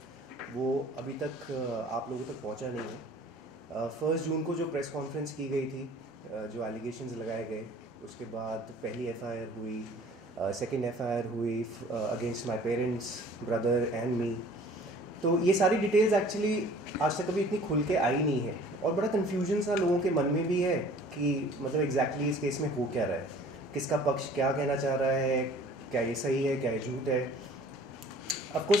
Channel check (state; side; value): normal; both; correlation 0.50